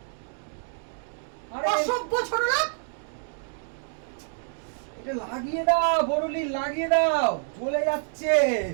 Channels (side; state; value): left; silent; digital silence